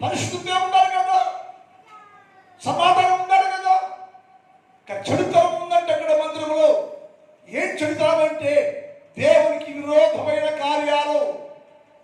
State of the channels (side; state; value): both; identical; correlation 1.00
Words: పరిశుద్ధంగా ఉండాలి కదా, సమాధానం ఉండాలి కదా. చెడుతనం ఉందంటే అక్కడ మందిరంలో ఏం చెడుతనం అంటే దేవునికి విరోధమైన కార్యాలు,